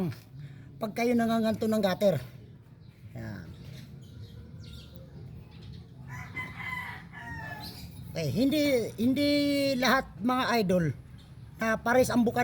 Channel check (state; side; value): identical; both; correlation 1.00